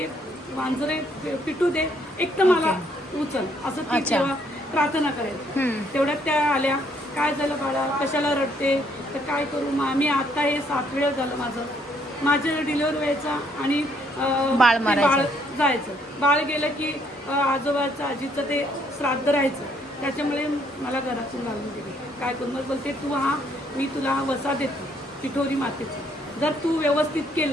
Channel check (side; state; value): both; normal; correlation 0.68